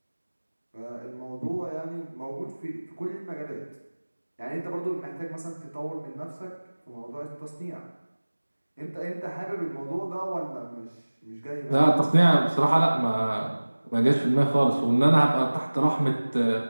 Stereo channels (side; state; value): both; inverted; correlation -1.00